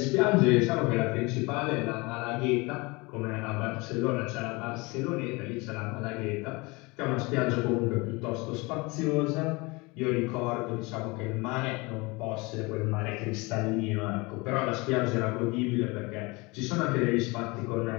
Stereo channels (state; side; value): quieter; right; 25.4 dB